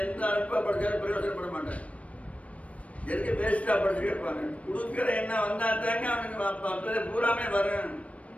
எந்த அல்ப படிச்சாலும் பிரயோஜனப்பட மாட்டேன். எதுக்கு வேஸ்டா படிச்சு கேட்பாங்க. கொடுக்கிற எண்ணம் வந்தா தாங்க அவனுக்கு பூராமே வரும்.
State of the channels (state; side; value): late; right; 0.065 ms